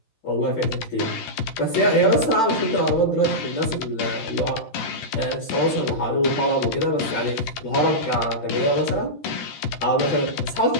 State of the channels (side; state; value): right; late; 13 ms